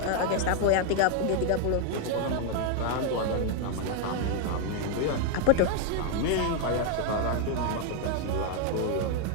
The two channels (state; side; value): different; both; correlation 0.01